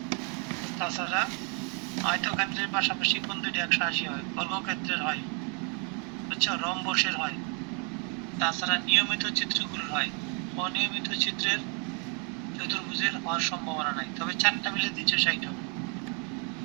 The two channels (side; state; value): left; quieter; 36.5 dB